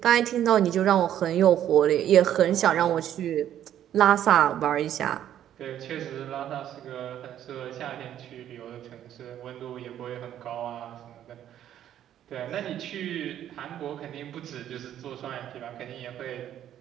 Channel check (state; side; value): quieter; left; 11.0 dB